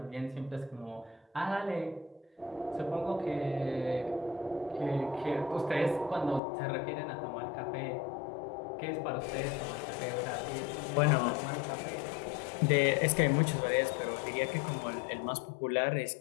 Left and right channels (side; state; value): right; drops out; at 6.4 s